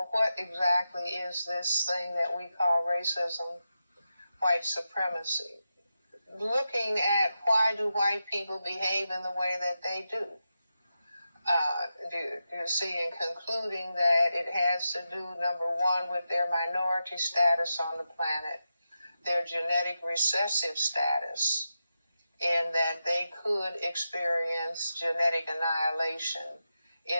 what exactly is this thing that we call racism, white supremacy? Looking at why do white people behave in the way that they do. You see, and concluding that it has to do, number one, with their minority status on the planet, their genetic recessive status, and that they could experience genetic annihilation,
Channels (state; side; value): inverted; both; correlation -0.89